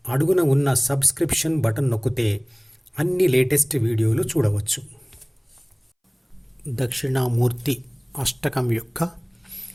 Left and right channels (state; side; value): identical; both; correlation 1.00